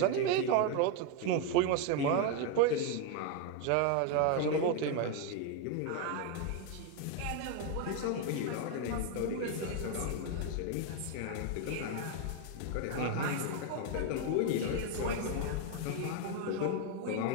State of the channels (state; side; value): different; both; correlation 0.02